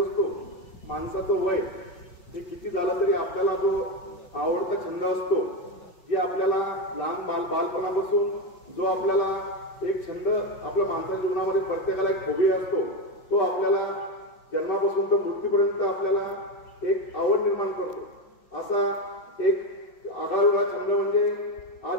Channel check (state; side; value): late; right; 5.7 ms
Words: माणसाचं वय हे किती झालं तरी आपल्याला जो आवडता छंद असतो जे आपल्याला लहान बालपणापासून जो आपल्याला एक छंद आपल्या माणसाच्या जीवनामध्ये प्रत्येकाला एक हॉबी असतो तो आपल्याला जन्मापासून तर मृत्यूपर्यंत आपल्याला एक आवड निर्माण करतो। असा एक आगळा छंद म्हणजे